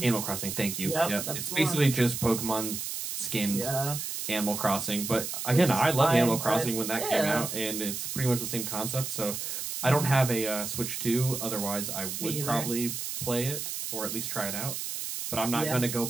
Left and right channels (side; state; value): right; noise; hiss, 5 dB below the sound